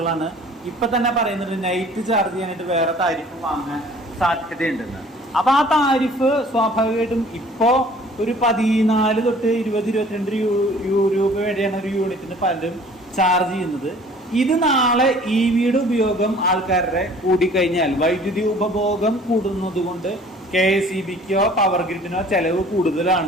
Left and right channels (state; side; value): normal; both; correlation 0.51